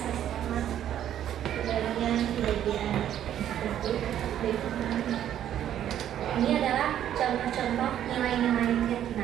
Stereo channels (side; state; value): left; quieter; 10.8 dB